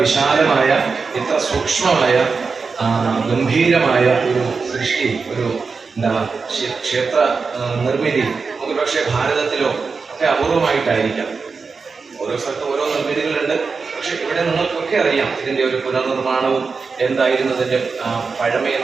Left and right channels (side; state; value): left; quieter; 4.8 dB